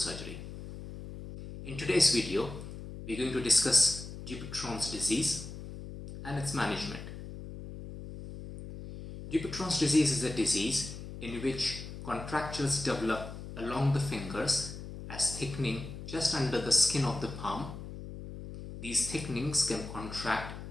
In today's video, we're going to discuss Dupuytren's disease and its management. Dupuytren's disease is a disease in which contractures develop along the fingers as thickening just under the skin of the palm. These thickenings can contract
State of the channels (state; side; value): noise; left; hum, 11 dB below the sound